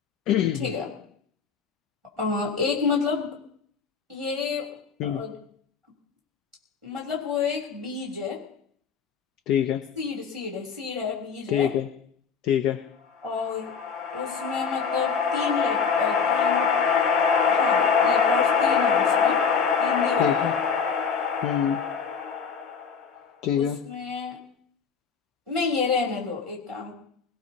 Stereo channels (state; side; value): quieter; right; 6.1 dB